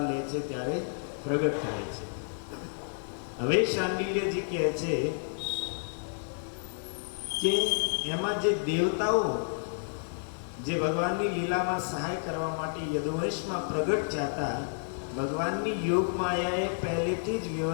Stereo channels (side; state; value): right; silent; digital silence